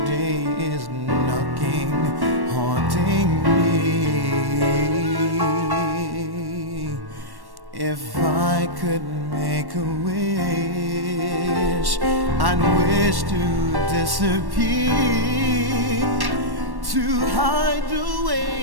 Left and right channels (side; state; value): left; late; 1.1 ms